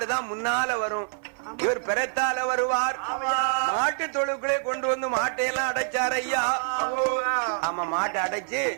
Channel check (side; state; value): left; silent; 55 dB below the other